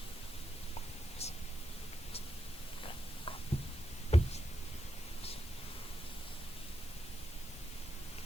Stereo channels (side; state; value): both; normal; correlation 0.86